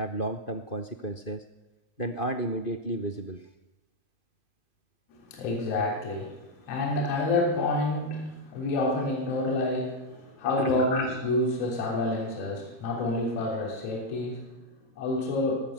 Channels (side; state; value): right; late; 2.8 ms